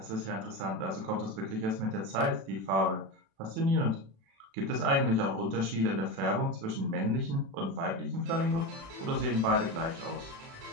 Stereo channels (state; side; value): late; left; 36 ms